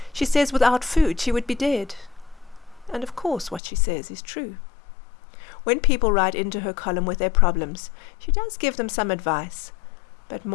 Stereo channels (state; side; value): drops out; right; at 3.6 s